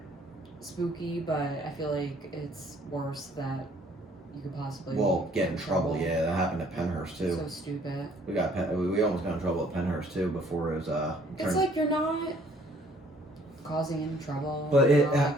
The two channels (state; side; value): normal; both; correlation 0.60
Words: spooky, but I feel like it's worse that you could possibly Get in trouble. Yeah, that happened at Penhurst too. So stupid. We almost got in trouble at Penhurst too before it was It's turned. like you're not causing any trouble. But you're it- not, like,